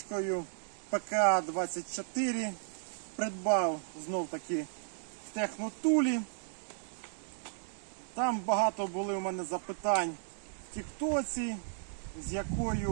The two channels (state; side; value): silent; left; digital silence